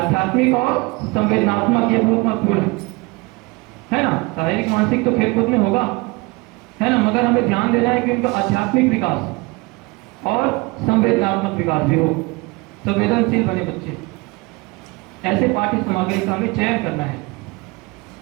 और संवेदनात्मक ये बहुत महत्वपूर्ण है ना। शारीरिक मानसिक तो खेलकूद में होगा, है ना, मगर हमें ध्यान देना है कि उनका आध्यात्मिक विकास और संवेदनात्मक विकास भी हो, संवेदनशील बने बच्चे। ऐसे पाठ्य सामग्री का हमें चयन करना है।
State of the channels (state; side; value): quieter; left; 25.3 dB